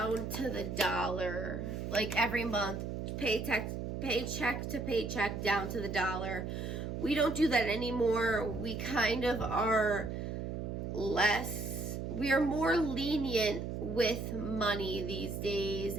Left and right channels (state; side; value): noise; right; hum, 4 dB below the sound